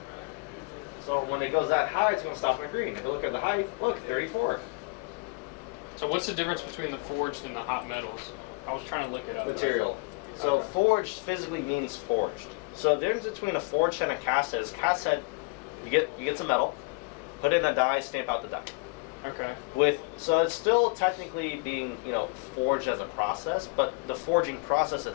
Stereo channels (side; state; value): right; quieter; 31.0 dB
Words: So when it goes that high, it's going to stop in the green. If you look at the height, look, 34. So what's the difference between the forged and the hot metals? I was trying to look it up. Material. So Okay. forged physically means forged. So the difference between a forged and a cast head is cast head, you get some metal, put it in a die, stamp out the die. Okay. So it's still technically being, you know, forged as a process, but the forging process